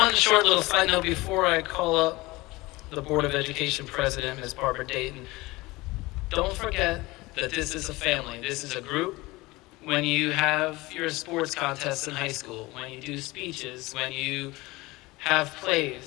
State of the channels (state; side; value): quieter; right; 21.3 dB